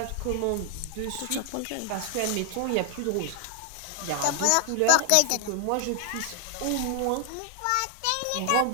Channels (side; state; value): both; different; correlation 0.00